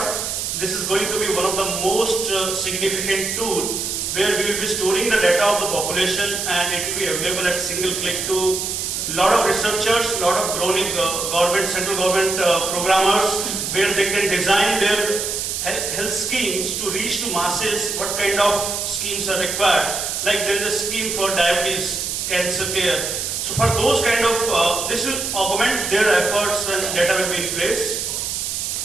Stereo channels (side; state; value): right; noise; hiss, 2 dB below the sound